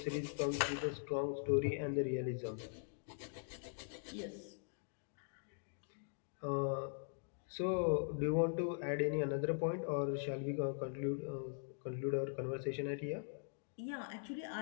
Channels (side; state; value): right; silent; digital silence